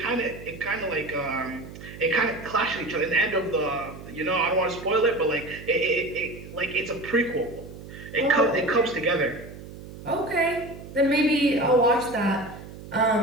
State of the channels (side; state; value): right; noise; hum, 14 dB below the sound